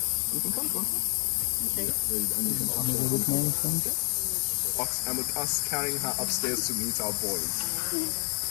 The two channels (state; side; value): quieter; right; 34.0 dB